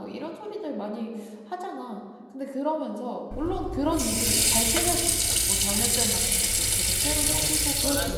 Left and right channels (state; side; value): identical; both; correlation 1.00